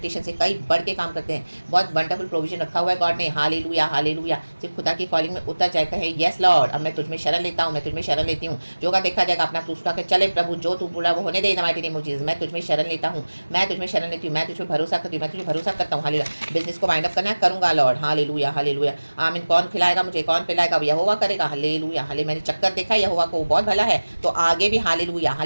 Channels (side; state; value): both; inverted; correlation -1.00